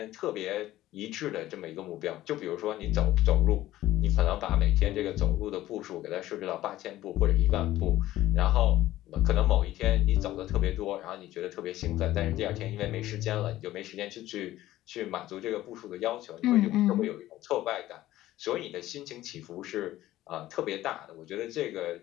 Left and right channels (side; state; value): right; quieter; 15.1 dB